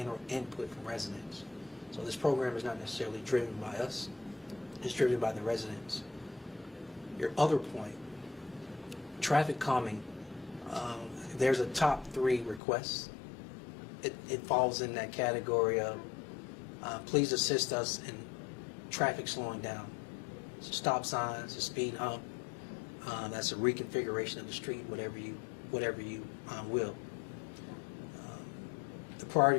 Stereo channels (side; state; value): right; drops out; at 12.6 s